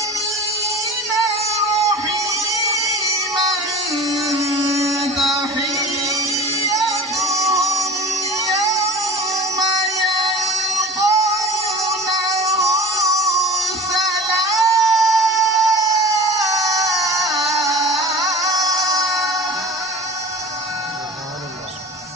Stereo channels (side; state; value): both; normal; correlation 0.38